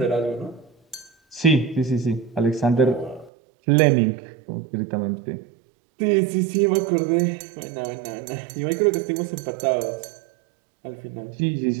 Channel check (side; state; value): left; drops out; at 3.3 s